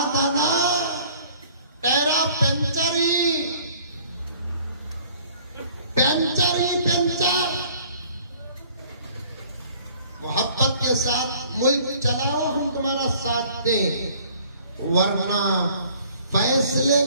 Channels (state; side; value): inverted; both; correlation -0.54